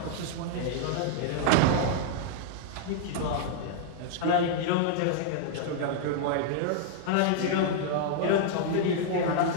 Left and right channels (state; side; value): different; both; correlation -0.01